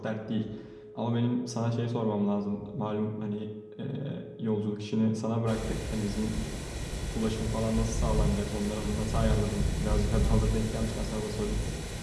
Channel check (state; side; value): identical; both; correlation 1.00